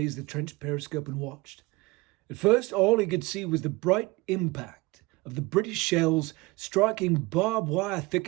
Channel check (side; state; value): left; quieter; 22.8 dB